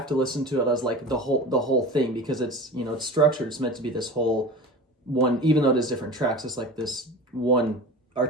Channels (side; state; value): both; normal; correlation 0.33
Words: to listen to it as like the whole thing, because it's it's structured. It's meant to be this whole one, even though it is different tracks. It's like this one